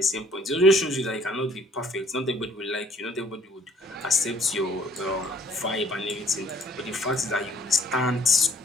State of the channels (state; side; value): normal; both; correlation 0.59